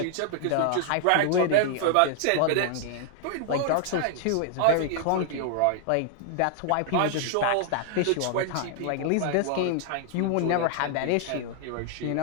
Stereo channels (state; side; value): different; both; correlation 0.00